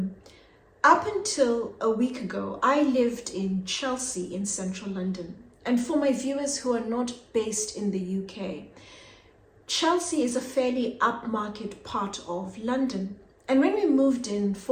Up until a week ago, I lived in Chelsea in central London. And for my viewers who are not based in the UK, Chelsea is a fairly upmarket part of London. And when we moved in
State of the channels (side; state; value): both; identical; correlation 1.00